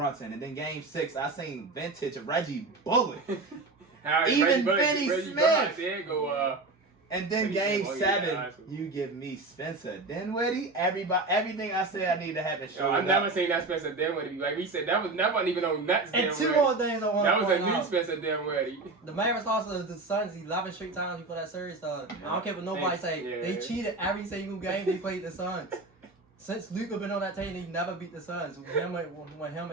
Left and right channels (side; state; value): left; quieter; 3.4 dB